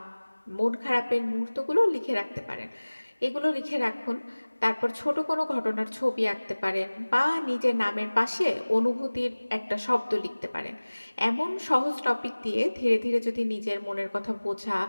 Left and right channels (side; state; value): both; inverted; correlation -1.00